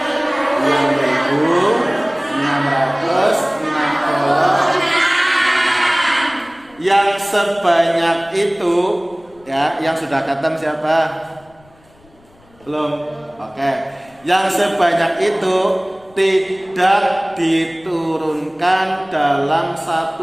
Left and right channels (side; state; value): left; noise; rumble, 30 dB below the sound